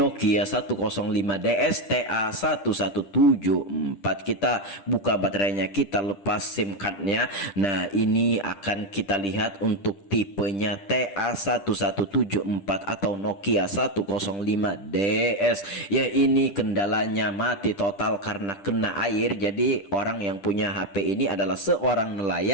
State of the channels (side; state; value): right; late; 10 ms